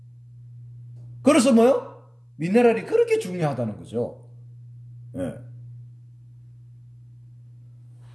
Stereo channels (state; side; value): identical; both; correlation 1.00